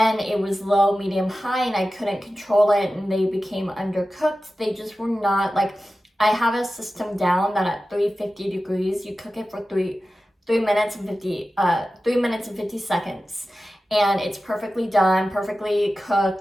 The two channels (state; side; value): normal; both; correlation 0.94